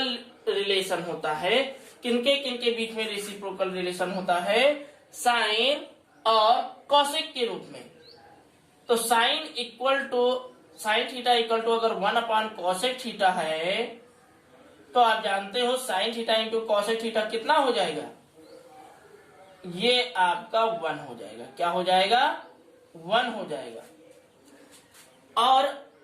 रिलेशन होता है, किनके किनके बीच में रेसिप्रोकल रिलेशन होता है, साइन और कॉसेक के रूप में। तो साइन थीटा इक्वल टू अगर 1 अपान कॉसेक थीटा है तो आप जानते हो sign theta into cosec theta कितना हो जाएगा, ये आपका 1 हो जाएगा। क्या हो जाएगा 1 हो जाएगा। और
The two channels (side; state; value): both; identical; correlation 1.00